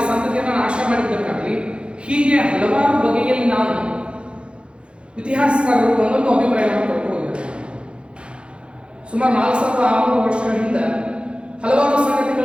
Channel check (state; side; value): late; left; 0.056 ms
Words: ಸಂತತಿಯನ್ನು ನಾಶ ಮಾಡಿದ್ದಕ್ಕಾಗಲಿ, ಹೀಗೆ ಹಲವಾರು ಬಗೆಯಲ್ಲಿ ನಾವು ಇತಿಹಾಸಕಾರರು ಒಂದೊಂದು ಅಭಿಪ್ರಾಯವನ್ನು ಕೊಟ್ಟು ಹೋಗಿದ್ದಾರೆ. ಸುಮಾರು 4600 ವರ್ಷಗಳ ಹಿಂದೆ ಹಲವಾರು